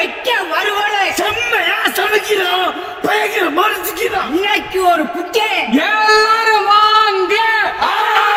வருவலை செம்மையா சமைக்கிறோம், பயங்கர மறைச்சிக்கிறோம். இன்னைக்கு ஒரு குட்டை எல்லாரும் வாங்க.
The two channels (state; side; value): identical; both; correlation 1.00